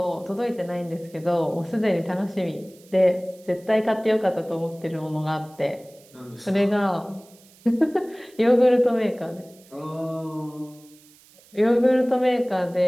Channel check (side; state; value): right; noise; hiss, 27 dB below the sound